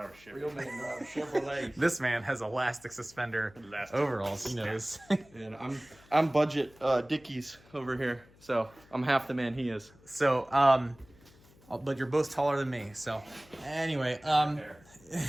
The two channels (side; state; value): left; noise; hum, 27 dB below the sound